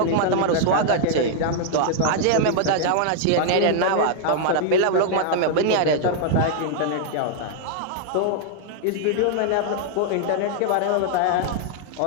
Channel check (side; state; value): both; different; correlation -0.01